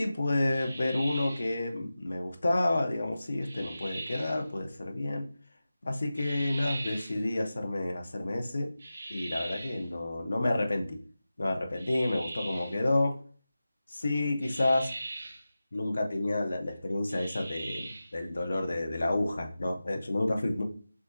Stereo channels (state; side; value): inverted; both; correlation -0.95